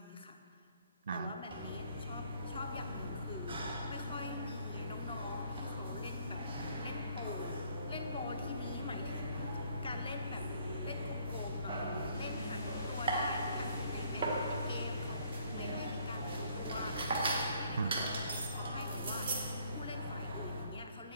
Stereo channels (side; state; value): both; inverted; correlation -0.64